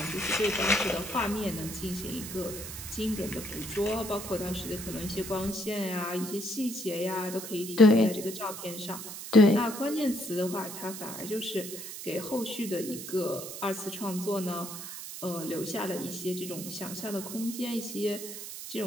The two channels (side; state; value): right; noise; hiss, 9 dB below the sound